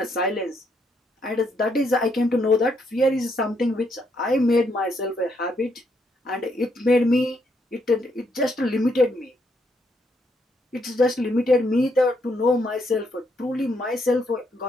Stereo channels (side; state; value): both; normal; correlation 0.75